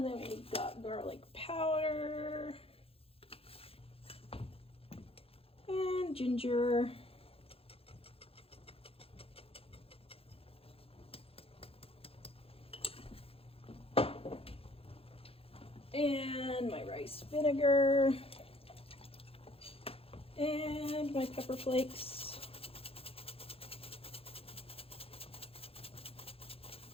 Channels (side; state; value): right; late; 0.27 ms